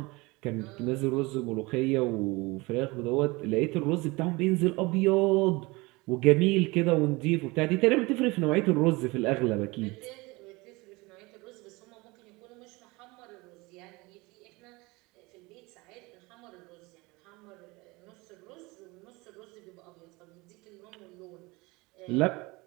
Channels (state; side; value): quieter; left; 23.8 dB